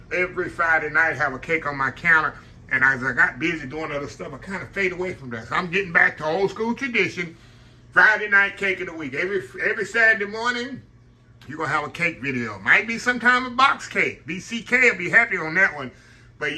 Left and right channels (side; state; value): both; identical; correlation 1.00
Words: every Friday night, have a cake on my counter. And as I got busy doing other stuff, I kind of fade away from that. So I'm getting back to old school tradition, Friday night cake of the week. Every Saturday morning, you're going to have a cake video. Might be sometime a box cake. BCK will be happy on that one.